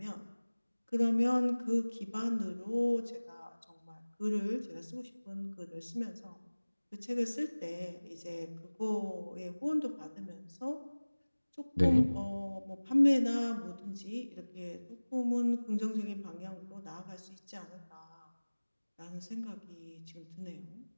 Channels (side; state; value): both; inverted; correlation -1.00